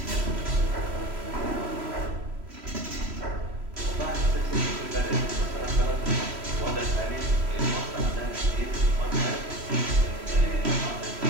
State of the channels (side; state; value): left; late; 3.1 ms